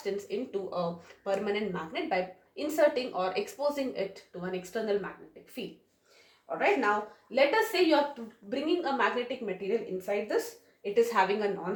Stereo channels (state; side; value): identical; both; correlation 1.00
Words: into a permanent magnet by inserting or exposing it to an external magnetic field. Alright, now let us say you are bringing a magnetic material inside this. It is having a